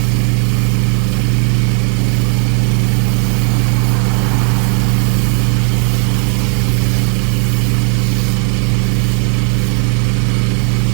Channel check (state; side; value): quieter; left; 39.6 dB